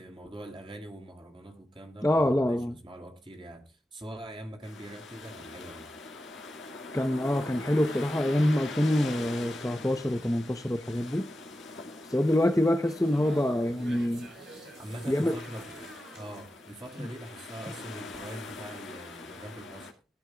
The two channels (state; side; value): normal; both; correlation 0.91